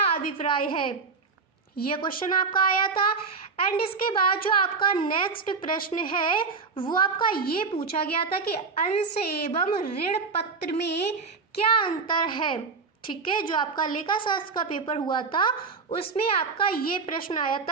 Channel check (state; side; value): quieter; left; 4.8 dB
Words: अभिप्राय है, ये क्वेश्चन आपका आया था। एंड इसके बाद जो आपका नेक्स्ट प्रश्न है वो आपका ये पूछा गया था कि अंश एवं ऋण पत्र में क्या अंतर है, ठीक है। जो आपका लेखा शास्त्र का पेपर हुआ था उसमें आपका ये प्रश्न आया